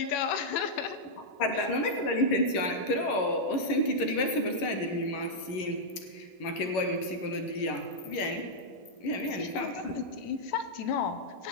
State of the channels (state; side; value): late; right; 11 ms